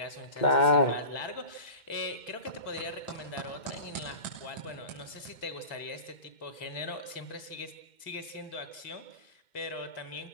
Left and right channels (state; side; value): late; right; 2.1 ms